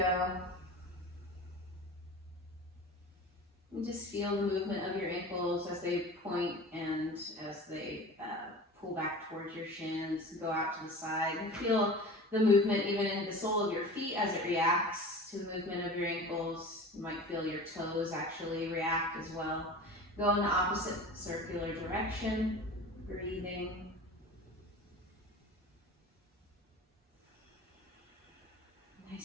And just feel the movement of your ankles as they point and as they pull back towards your shins, go out to the side. And feel the movement even in the sole of your feet as it reacts to the movement of your ankles. You might feel your toes actually react as well. Go in the opposite circular direction, breathing.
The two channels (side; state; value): both; normal; correlation 0.36